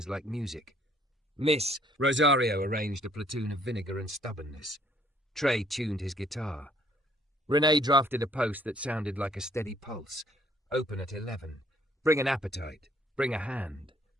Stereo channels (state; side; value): normal; both; correlation 0.63